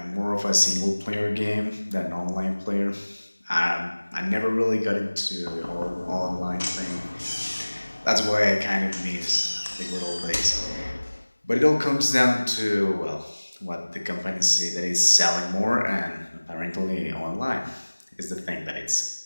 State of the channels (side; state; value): both; inverted; correlation -1.00